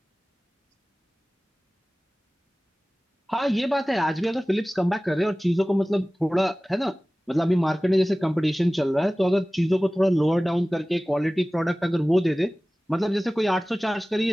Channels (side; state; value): both; normal; correlation 0.98